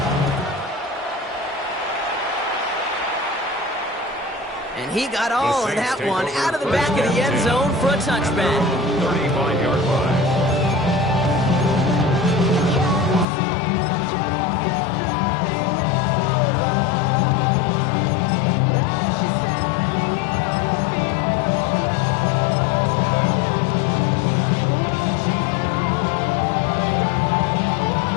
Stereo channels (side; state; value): right; drops out; at 13.2 s